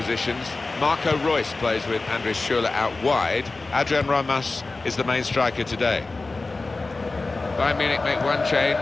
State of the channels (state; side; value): quieter; right; 3.5 dB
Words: Marco Reus plays with Andres Schürrle out wide. Adrian Ramos is the main striker today. Bayern Munich make one